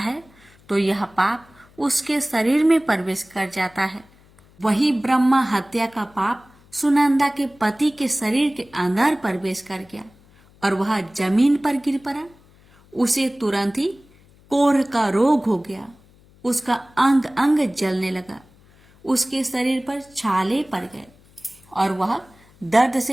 तो यह पाप उसके शरीर में प्रवेश कर जाता है। वही ब्रह्मा हत्या का पाप सुनंदा के पति के शरीर के अंदर प्रवेश कर गया और वह जमीन पर गिर पड़ा। उसे तुरंत ही कोढ़ का रोग हो गया। उसका अंग अंग जलने लगा, उसके शरीर पर छाले पड़ गए और वह दर्द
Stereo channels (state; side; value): noise; left; hum, 28 dB below the sound